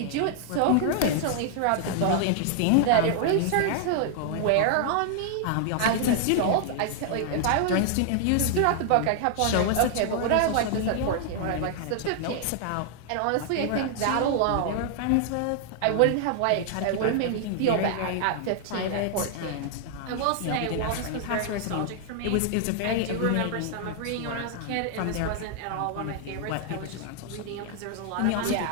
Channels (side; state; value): both; different; correlation 0.00